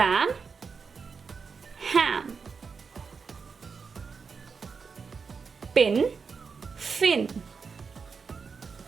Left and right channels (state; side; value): quieter; left; 5.4 dB